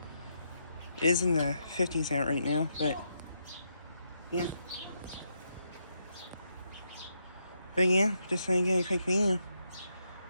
It is in the 50s out right now, but yeah. But yeah, just gonna get a quick video of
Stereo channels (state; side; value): inverted; both; correlation -0.80